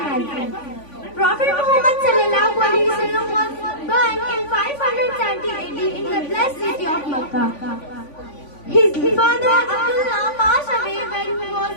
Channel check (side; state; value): right; late; 3.5 ms